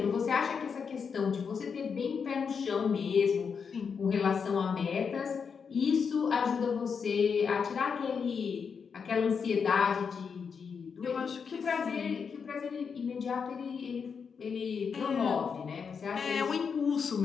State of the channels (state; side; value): quieter; right; 6.1 dB